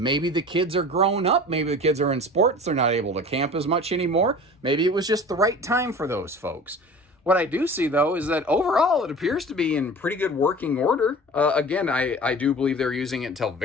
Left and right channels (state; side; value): normal; both; correlation 0.39